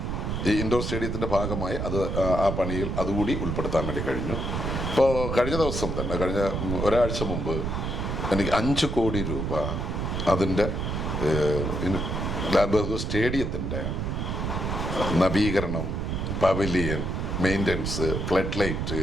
ഈ ഇൻഡോർ സ്റ്റേഡിയത്തിൻ്റെ ഭാഗമായി ആ പണിയിൽ അതുകൂടി ഉൾപ്പെടുത്താൻ വേണ്ടി കഴിഞ്ഞു. ഇപ്പോൾ കഴിഞ്ഞ ദിവസം തന്നെ, കഴിഞ്ഞ ഒരാഴ്ച മുമ്പ് എനിക്ക് 5 കോടി രൂപ അതിൻ്റെ ലാൽ ബഹദൂർ സ്റ്റേഡിയത്തിൻ്റെ നവീകരണം, പവലിയൻ, മെയിൻ്റനൻസ്, ഫ്ലഡ് ലൈറ്റ്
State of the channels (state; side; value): noise; right; rumble, 2 dB below the sound